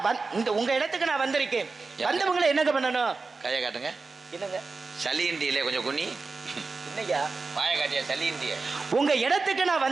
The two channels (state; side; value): quieter; left; 4.1 dB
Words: இந்த உங்க இடத்துக்கு நான் வந்திருக்கேன். வந்தவங்களை என்னங்க பண்ணணும்? கையை காட்டுங்க. என்னங்க சளியிண்டியிலே கொஞ்சம் குனி. என்னையா வாய காட்டியா? சளியிண்டிய உங்க இடத்துக்கு நான்